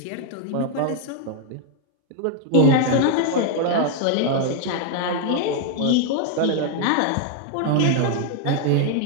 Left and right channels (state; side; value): different; both; correlation 0.00